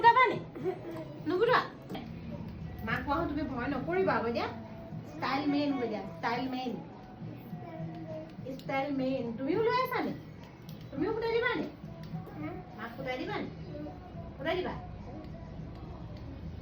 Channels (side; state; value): both; identical; correlation 1.00